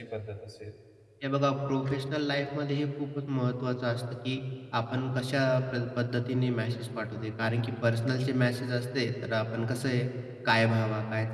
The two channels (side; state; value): both; identical; correlation 1.00